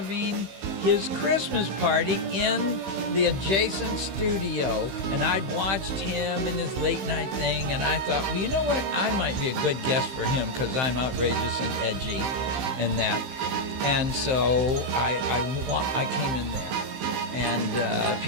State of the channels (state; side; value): late; left; 15 ms